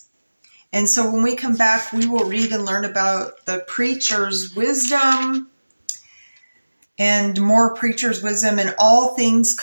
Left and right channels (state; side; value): inverted; both; correlation -1.00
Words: And so when we come back, we will read and learn about the preacher's wisdom and more preacher's wisdom, and all things